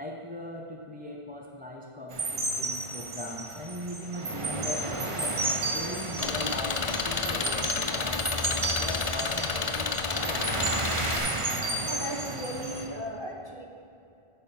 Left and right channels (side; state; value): left; late; 1.5 ms